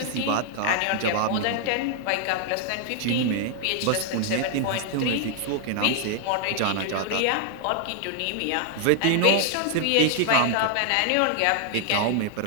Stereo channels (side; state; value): both; different; correlation 0.00